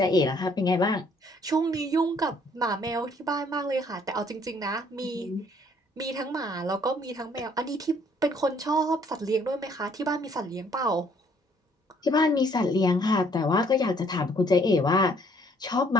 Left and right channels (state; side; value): normal; both; correlation 0.63